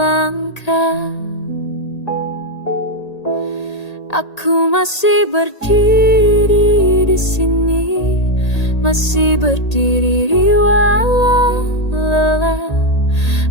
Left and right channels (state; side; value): late; right; 1.8 ms